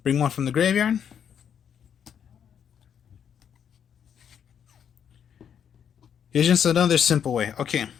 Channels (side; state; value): right; quieter; 8.3 dB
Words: Bring one from the graveyard. Here's just another simple way. Okay.